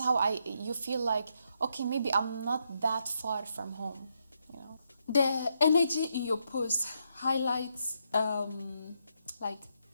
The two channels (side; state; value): both; inverted; correlation -0.79